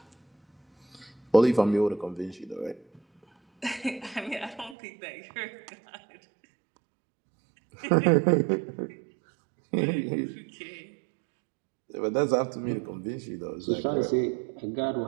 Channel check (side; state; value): left; drops out; at 4.8 s